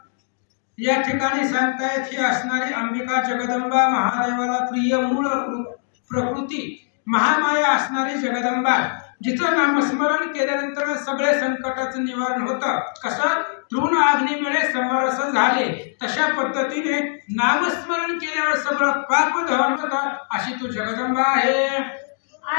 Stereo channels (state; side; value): silent; right; digital silence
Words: या ठिकाणी सांगतायत ही असणारी अंबिका जगदंबा महादेवाला प्रिय मूळ प्रकृती महामाया असणारी जगदंबा जिचं नामस्मरण केल्यानंतर सगळे संकटाचं निवारण होतं। कसं तृण अग्नीमुळे समरस झाले तशा पद्धतीने नामस्मरण केल्यावर सगळं पाप दहन होतं। अशी तू जगदंबा आहे।